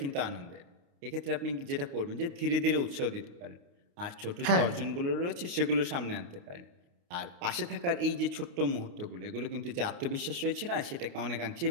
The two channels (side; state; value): left; late; 29 ms